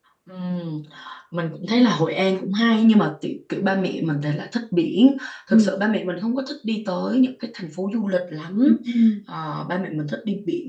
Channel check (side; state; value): both; identical; correlation 1.00